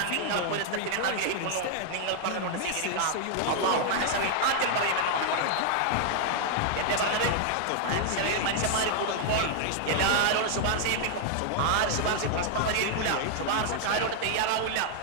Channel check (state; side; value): different; both; correlation 0.00